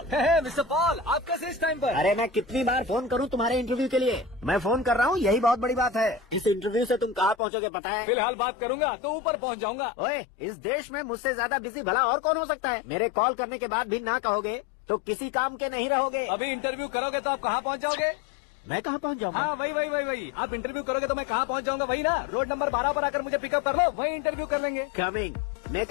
मिस्टर पॉल, आप कैसे इस टाइम पर? अरे मैं कितनी बार फोन करूं तुम्हारे इंटरव्यू के लिए? मैं फोन कर रहा हूं, यही बहुत बड़ी बात है। इस इंटरव्यू से तुम कहाँ पहुँचोगे पता है? फिलहाल बात करूंगा तो ऊपर पहुंच जाऊंगा। ओए, इस देश में मुझसे ज्यादा बिजी भला और कौन हो सकता है? मेरे कॉल करने के बाद भी ना कहोगे तो किसी काम के नहीं रहोगे। अभी इंटरव्यू करोगे तो आप कहाँ पहुँच जाओगे? मैं कहाँ पहुँच जाऊँगा? हाँ वही। आप इंटरव्यू करोगे तो मैं कहाँ पहुँच जाऊंगा? वही ना, रोड नंबर 12 पर आकर मुझे पिकअप कर लो, वही इंटरव्यू कर लेंगे। कमिंग।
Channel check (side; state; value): right; drops out; at 7.4 s